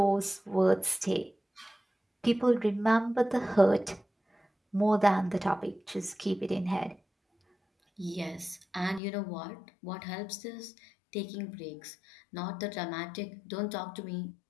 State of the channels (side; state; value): right; drops out; at 9.0 s